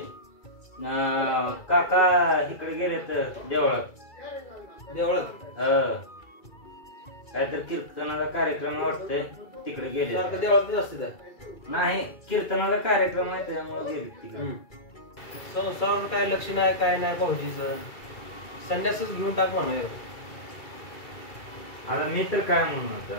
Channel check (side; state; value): right; late; 2.3 ms